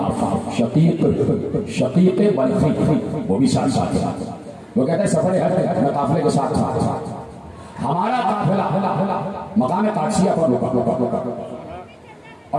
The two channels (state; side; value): identical; both; correlation 1.00